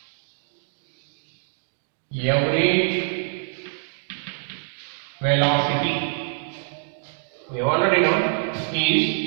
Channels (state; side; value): silent; left; digital silence